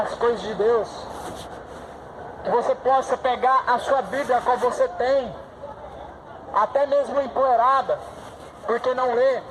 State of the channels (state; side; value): identical; both; correlation 1.00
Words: coisas de Deus. Que você possa pegar a sua Bíblia, qual você tem, até mesmo empoeirada, porque não lê,